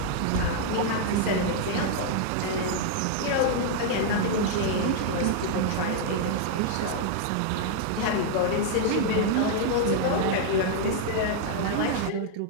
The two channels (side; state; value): both; different; correlation -0.01